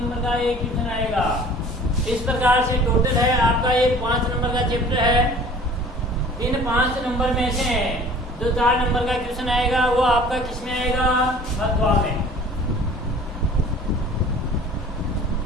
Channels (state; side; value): normal; both; correlation 0.47